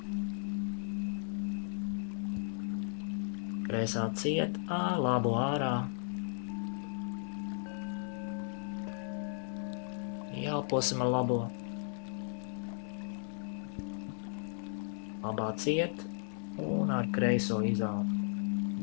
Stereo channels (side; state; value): right; silent; 54 dB below the other